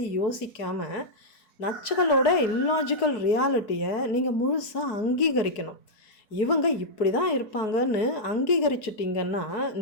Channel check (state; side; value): late; right; 4.6 ms